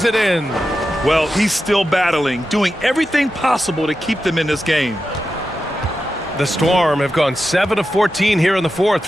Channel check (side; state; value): both; normal; correlation 0.90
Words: it in. Well, he's still battling, doing everything possible to keep them in this game. The Storm have gone 7 of 14 here in the fourth